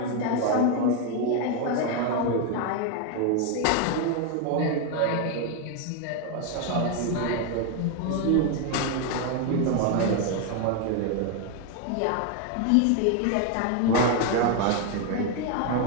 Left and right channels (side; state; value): both; different; correlation 0.01